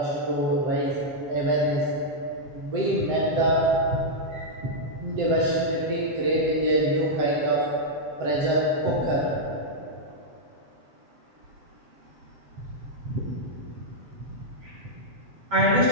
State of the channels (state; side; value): late; left; 7.6 ms